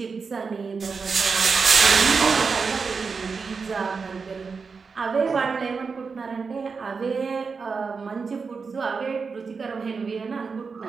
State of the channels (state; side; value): quieter; left; 5.0 dB